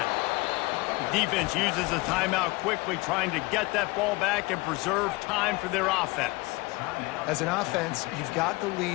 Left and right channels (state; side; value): quieter; right; 23.2 dB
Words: Defense uses a timeout quickly, trying to get that ball back and preserve time for their offense. As an offense, you've got the